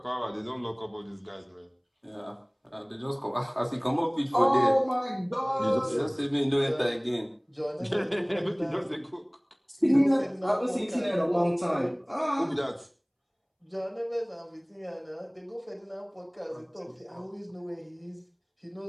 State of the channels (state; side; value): identical; both; correlation 1.00